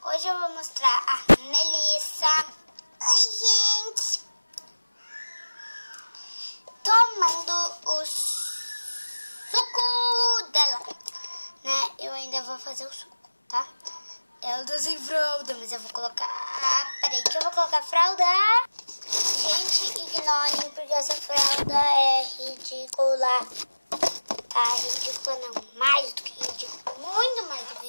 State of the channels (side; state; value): both; inverted; correlation -1.00